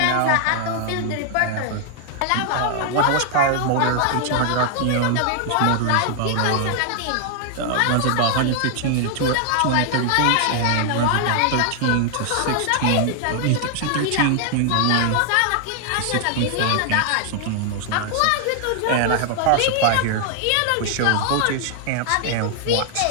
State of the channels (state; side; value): different; both; correlation 0.00